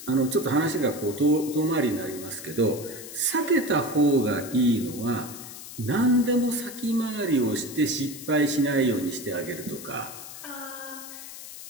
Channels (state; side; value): noise; left; hiss, 13 dB below the sound